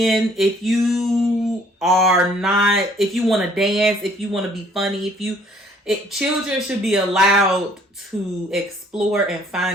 If you want to dance, if you want to be funny, Children should be allowed to explore and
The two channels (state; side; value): normal; both; correlation 0.60